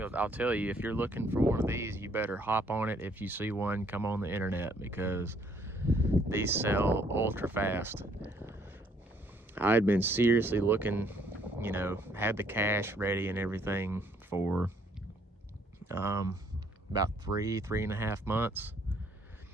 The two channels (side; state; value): both; normal; correlation 0.65